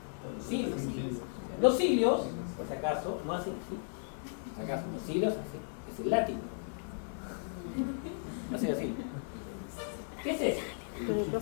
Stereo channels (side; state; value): right; silent; 54 dB below the other